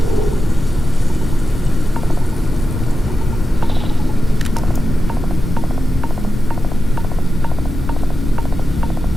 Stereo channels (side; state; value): both; normal; correlation 0.91